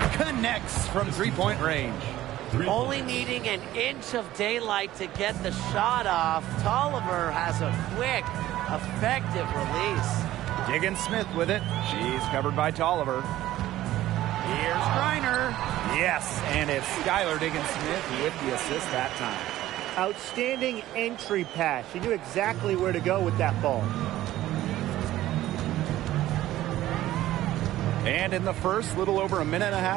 connects from three-point range. Only needing an inch of daylight to get the shot off, Tolliver has a quick, effective release. Diggins Smith with it. She's covered by Tolliver. Here's Griner. Yes, and it's Skylar Diggins Smith with the assist that time. Outstanding entry pass. She knew exactly where to go with that ball. And in the first, little over a minute and a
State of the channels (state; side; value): quieter; left; 14.6 dB